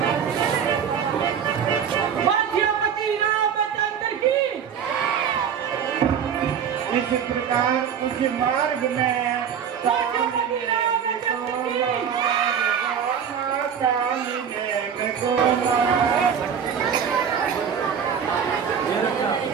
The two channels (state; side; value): quieter; left; 7.8 dB